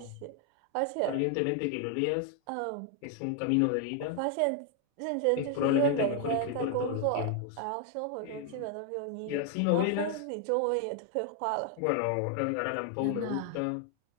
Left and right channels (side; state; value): both; different; correlation 0.00